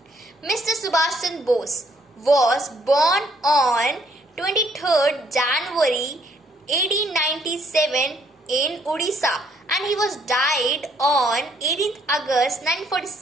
Mr. Subhash Chandra Bose was born on 23rd January 1897 in Odisha, and he was died on 18th August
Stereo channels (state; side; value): normal; both; correlation 0.67